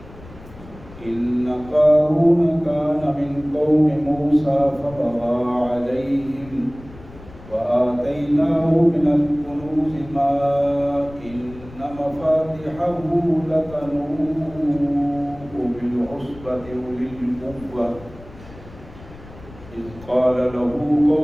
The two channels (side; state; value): left; noise; rumble, 19 dB below the sound